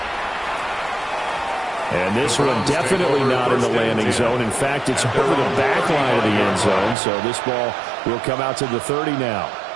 And this one definitely not in the landing zone. In fact, it's over the back line of the end zone. So this ball will come out to the 30 now.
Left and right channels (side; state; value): left; drops out; at 7.0 s